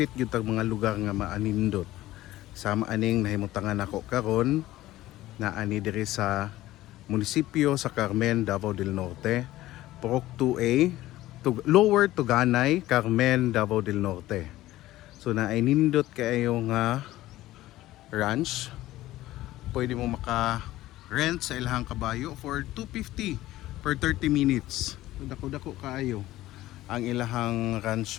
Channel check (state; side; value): quieter; right; 15.9 dB